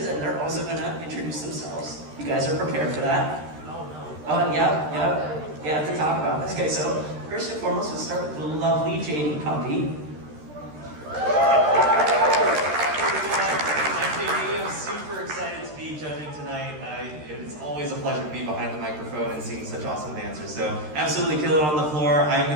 and they're also going to introduce themselves. You guys are prepared for that? Oh, yeah, to talk about this. Okay, so first and foremost, we'll start with the lovely JD Puppy. I'm JD. I'm super excited to be judging tonight. It's always a pleasure to be behind the microphone and seeing such awesome dancers. So absolutely kill it on the floor. I'm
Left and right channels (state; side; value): late; left; 13 ms